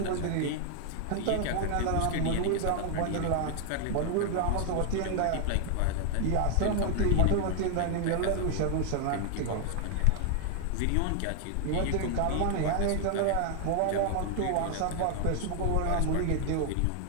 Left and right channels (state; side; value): different; both; correlation 0.00